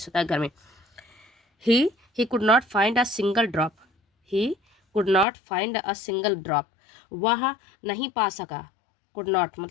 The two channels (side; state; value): right; drops out; at 5.2 s